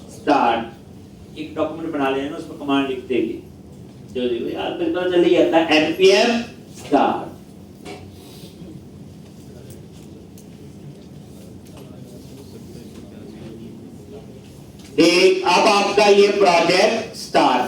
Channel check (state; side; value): identical; both; correlation 1.00